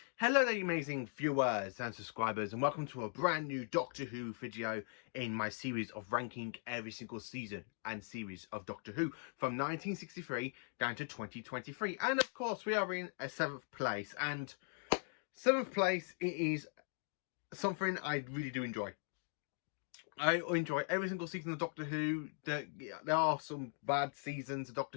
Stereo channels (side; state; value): right; silent; 51 dB below the other